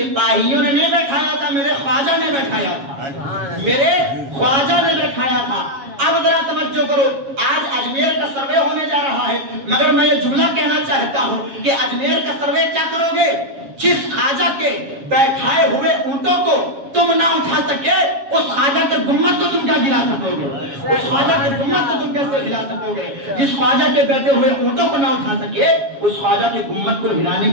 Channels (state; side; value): late; left; 7.3 ms